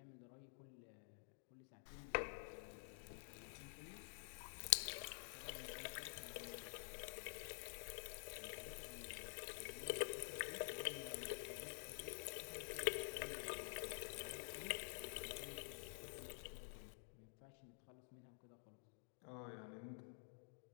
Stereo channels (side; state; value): right; silent; digital silence